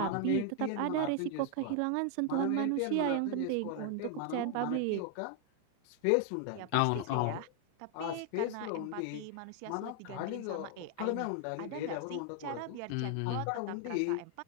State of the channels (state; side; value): different; both; correlation 0.00